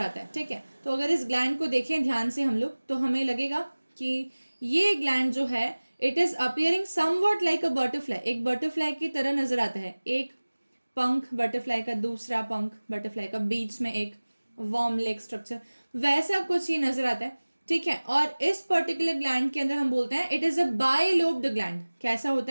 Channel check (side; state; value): both; inverted; correlation -1.00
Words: है. ठीक है, तो अगर इस ग्लैंड को देखें ध्यान से हम लोग, तो हमें लगेगा कि ये ग्लैंड जो है it is appearing somewhat like a butterfly, एक बटरफ्लाई की तरह नजर आता है. एक पंख बटरफ्लाई का, दूसरा पंख बटरफ्लाई का, बीच में एक वॉर्म लेग स्ट्रक्चर, वैसा कुछ ही नजर आता है. ठीक है, और इस पर्टिकुलर ग्लैंड के अंदर हम बोलते हैं it is a bilobed gland. कैसा